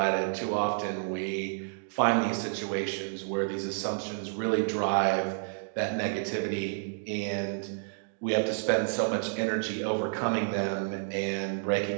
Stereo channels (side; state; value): left; silent; digital silence